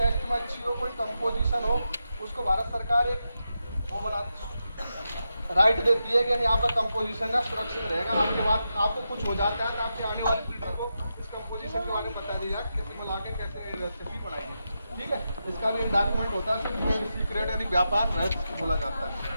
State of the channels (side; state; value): both; inverted; correlation -0.88